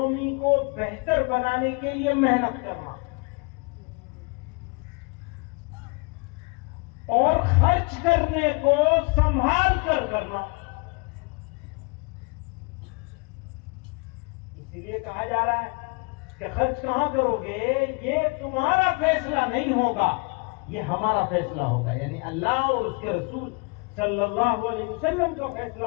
को बेहतर बनाने के लिए मेहनत करना और खर्च करने को संभाल कर करना। इसीलिए कहा जा रहा है कि खर्च कहां करोगे ये तुम्हारा फैसला नहीं होगा, ये हमारा फैसला होगा, यानी अल्लाह और उसके रसूल सल्लल्लाहु अलैहि वसल्लम का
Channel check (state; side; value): quieter; right; 31.9 dB